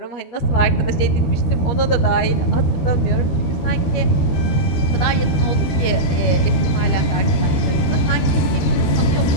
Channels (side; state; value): right; late; 13 ms